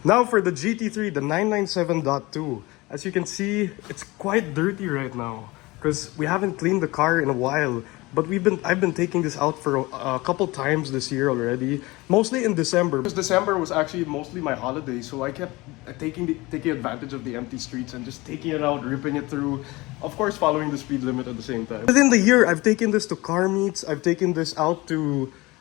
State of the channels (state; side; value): quieter; right; 21.9 dB